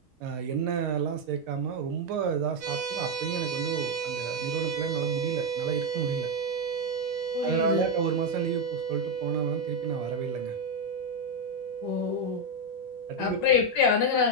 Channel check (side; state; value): both; normal; correlation 0.04